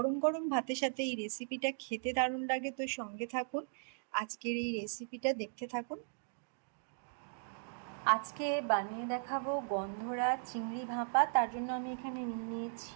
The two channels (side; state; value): left; silent; digital silence